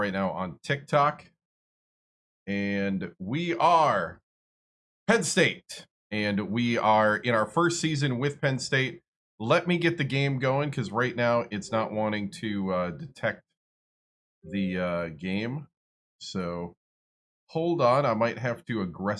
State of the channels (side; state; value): both; identical; correlation 1.00